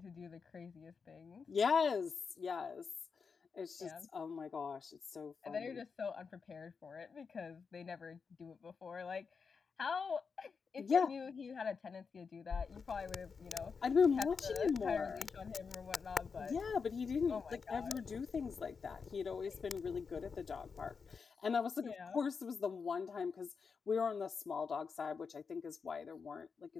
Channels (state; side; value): quieter; right; 5.5 dB